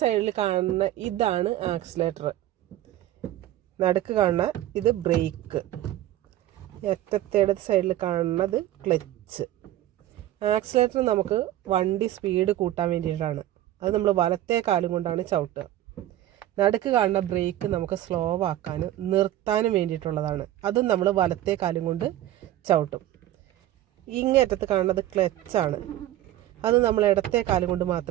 സൈഡിൽ കാണുന്ന ഇതാണ് ആക്സിലേറ്റർ, നടുക്ക് കാണുന്ന ഇത് ബ്രേക്ക്, അറ്റത്തേടെ സൈഡിൽ കാണുന്നത് ക്ലച്ച്. ആക്സിലേറ്റർ നമുക്ക് വണ്ടി സ്പീഡ് കൂട്ടാൻ വേണ്ടിയിട്ടാണ്. അത് നമ്മൾ വലത്തെ കാലും കൊണ്ടാണ് ചവിട്ടുക. നടുക്ക് കാണുന്ന ബ്രേക്ക് നമുക്ക് സ്ലോ ആക്കാനും നിർത്താനും വേണ്ടിയിട്ടുള്ളതാണ്. അതും നമ്മൾ വലത്തെ കാലും കൊണ്ട് ചവിട്ടും. ഇങ്ങേറ്റത്ത് കാണുന്നത് ക്ലച്ചാണ്. അത് നമ്മൾ ഇടത്തെ കാലും കൊണ്ട്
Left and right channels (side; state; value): left; quieter; 13.8 dB